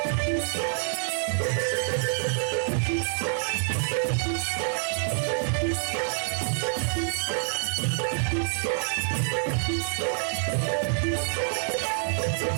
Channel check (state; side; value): silent; left; 60 dB below the other